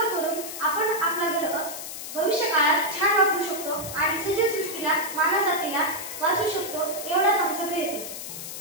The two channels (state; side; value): noise; left; hiss, 8 dB below the sound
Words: करून आपण आपला ग्रह भविष्य काळात छान वापरू शकतो आणि सजीव सृष्टीला, मानव जातीला वाचवू शकतो. एवढाच आमचा प्रयत्न.